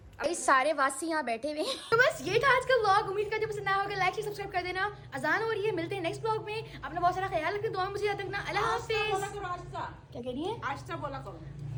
ये सारे वासी यहाँ बैठे हुए हैं। तो बस ये था आज का व्लॉग। उम्मीद करती हूँ पसंद आया होगा। लाइक शेयर सब्सक्राइब कर देना। अजान हो रही है, मिलते हैं नेक्स्ट व्लॉग में। अपना बहुत सारा ख्याल रखना, दुआ में मुझे याद रखना। अल्लाह हाफिज। क्या कह रही है? आस्था बोला करो।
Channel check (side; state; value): both; identical; correlation 1.00